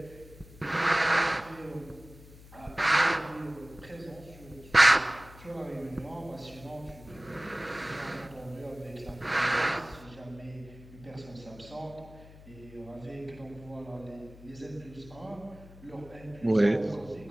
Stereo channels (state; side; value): noise; left; hum, 19 dB below the sound